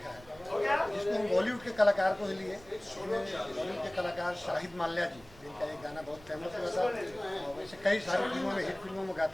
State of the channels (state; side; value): noise; right; rumble, 23 dB below the sound